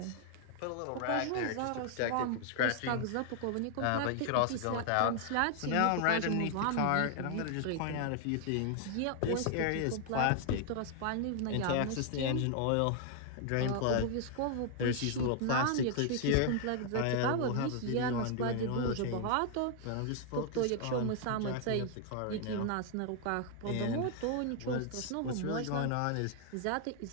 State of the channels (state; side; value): different; both; correlation 0.00